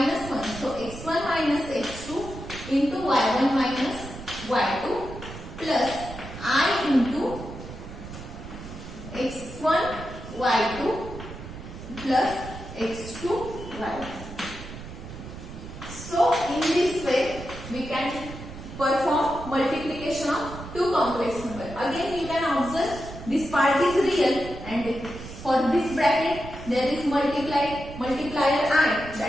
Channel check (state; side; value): noise; right; rumble, 12 dB below the sound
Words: 1. So X1 minus X2 into Y1 minus Y2 plus I into X1 Y2 plus X2 Y2. So in this way we can perform multiplication of two complex numbers. Again you can observe this part is real and for this bracket there is multiplier I,